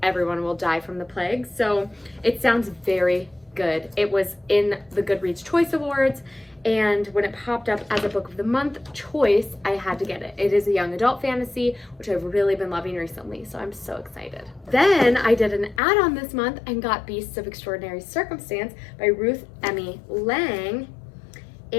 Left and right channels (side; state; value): right; drops out; at 15.8 s